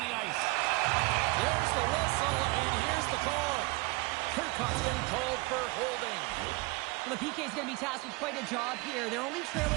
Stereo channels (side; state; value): left; quieter; 24.9 dB